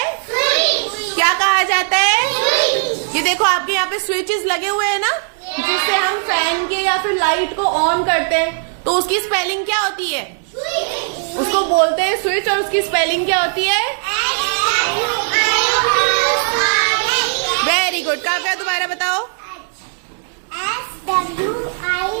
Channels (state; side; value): silent; left; 66 dB below the other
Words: स्विच। क्या कहा जाता है? स्विच। ये देखो आपके यहाँ पे स्विचेस लगे हुए हैं ना, जिससे हम फैन के या फिर लाइट को ऑन करते हैं। तो उसकी स्पेलिंग क्या होती है? स्विच। उसको बोलते हैं स्विच, और उसकी स्पेलिंग क्या होती है? Very good. काव्या दोबारा बताओ।